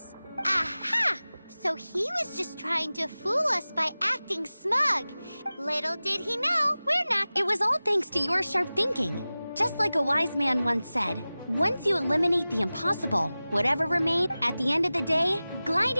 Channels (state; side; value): inverted; both; correlation -0.97